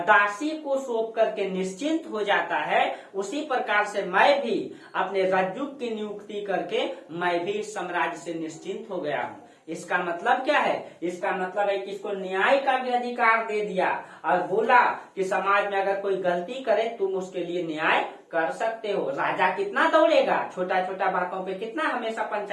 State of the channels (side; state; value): both; identical; correlation 1.00